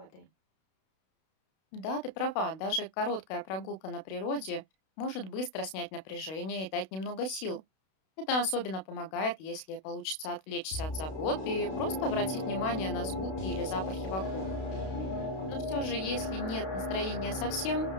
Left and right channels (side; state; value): right; late; 32 ms